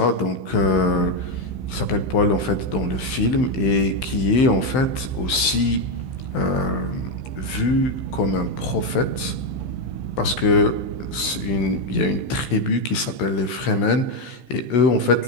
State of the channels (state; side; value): late; right; 15 ms